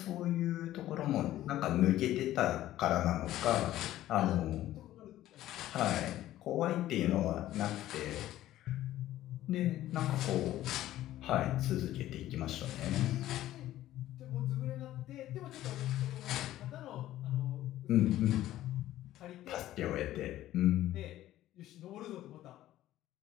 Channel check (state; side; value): quieter; right; 14.0 dB